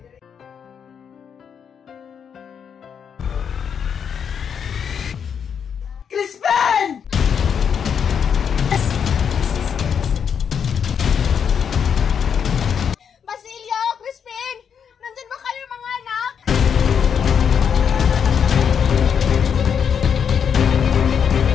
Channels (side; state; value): right; quieter; 7.4 dB